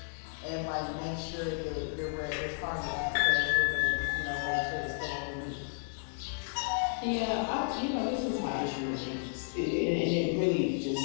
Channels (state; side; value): silent; right; 56 dB below the other